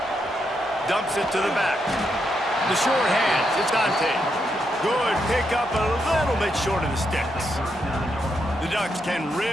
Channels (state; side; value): normal; both; correlation 0.81